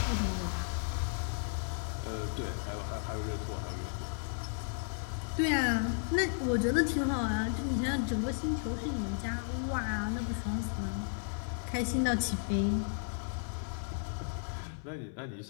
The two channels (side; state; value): right; silent; 55 dB below the other